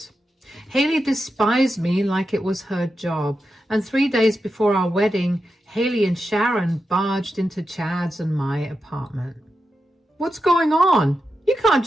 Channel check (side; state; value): both; normal; correlation 0.89